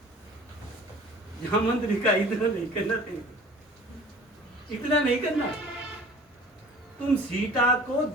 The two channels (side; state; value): both; normal; correlation 0.46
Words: मंत्री का इतना नहीं करना चाहिए, इतना नहीं करना। तुम सीता को